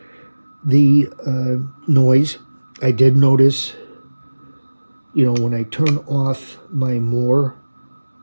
the noise. I did notice, when I turn off my more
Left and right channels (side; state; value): both; inverted; correlation -1.00